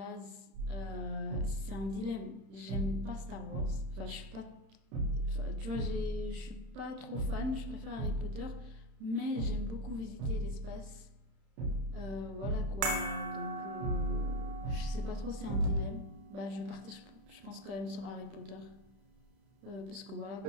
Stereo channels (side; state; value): left; late; 31 ms